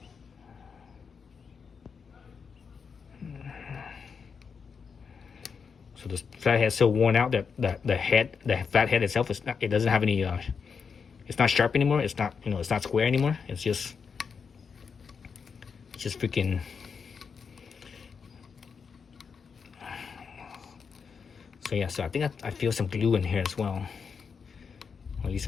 So this flathead is so worn out that the flathead itself is not, it doesn't have any it's not sharp anymore. It's not, you know, it's not square anymore. It's just freaking. So yeah, so I think I feel some glue in here as well. Or at least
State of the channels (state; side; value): quieter; right; 5.9 dB